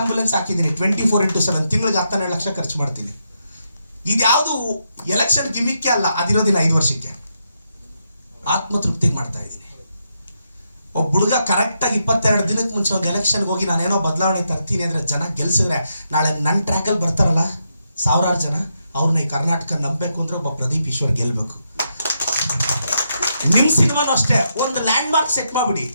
ಹಾಕಿದ್ದೀನಿ. 24/7 ತಿಂಗಳಿಗೆ 12 ಲಕ್ಷ ಖರ್ಚು ಮಾಡ್ತೀನಿ. ಇದ್ಯಾವುದು ಎಲೆಕ್ಷನ್ ಗಿಮಿಕ್ಕೆ ಅಲ್ಲ, ಅದಿರೋದಿನ 5 ವರ್ಷಕ್ಕೆ ಆತ್ಮತೃಪ್ತಿಗೆ ಮಾಡ್ತಾ ಇದ್ದೀನಿ. ಒಬ್ಬ ಹುಡುಗ ಕರೆಕ್ಟಾಗಿ 22 ದಿನಕ್ಕೆ ಮುಂಚೆ ಒಂದು ಎಲೆಕ್ಷನ್ಗೆ ಹೋಗಿ ನಾನೇನೋ ಬದಲಾವಣೆ ತರ್ತೀನಿ ಅಂದರೆ ಜನ ಗೆಲ್ಸಿದ್ರೆ ನಾಳೆ ನನ್ನ ಟ್ರ್ಯಾಕಲ್ಲಿ ಬರ್ತಾರಲ್ಲ 1000 ಜನ, ಅವ್ರನ್ನ ಈ ಕರ್ನಾಟಕ ನಂಬಬೇಕು ಅಂದ್ರೆ ಒಬ್ಬ ಪ್ರದೀಪ್ ಈಶ್ವರ್ ಗೆಲ್ಬೇಕು. ನಿಮ್ ಸಿನಿಮಾನು ಅಷ್ಟೇ, ಒಂದು ಲ್ಯಾಂಡ್ ಮಾರ್ಕ್ ಸೆಟ್ ಮಾಡ್ಬಿಡಿ.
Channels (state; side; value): inverted; both; correlation -0.81